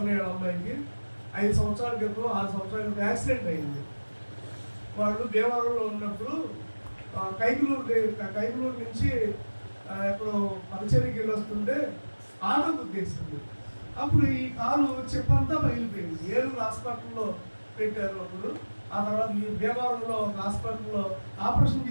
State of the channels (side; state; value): both; inverted; correlation -1.00